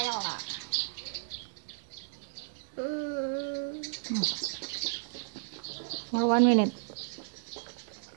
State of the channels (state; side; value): silent; left; digital silence